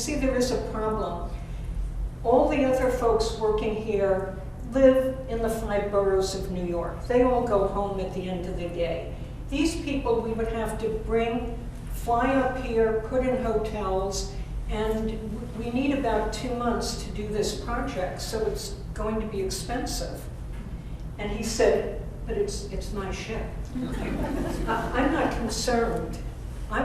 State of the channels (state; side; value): identical; both; correlation 1.00